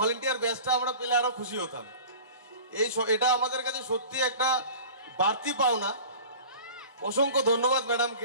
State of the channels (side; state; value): both; inverted; correlation -0.40